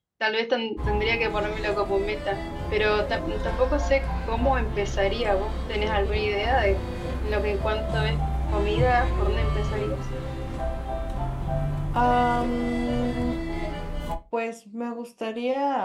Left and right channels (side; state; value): both; identical; correlation 1.00